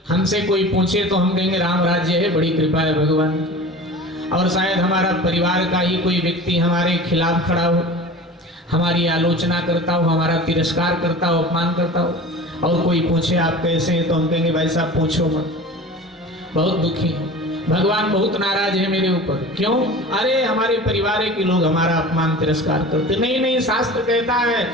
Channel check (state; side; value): normal; both; correlation 0.37